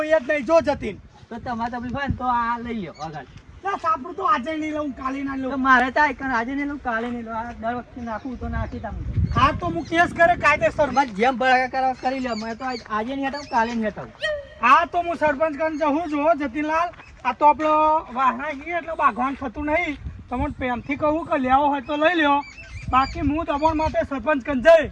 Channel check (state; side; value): identical; both; correlation 1.00